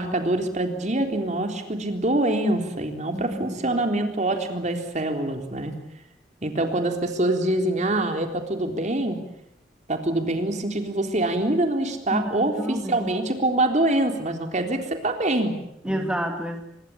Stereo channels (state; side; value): normal; both; correlation 0.43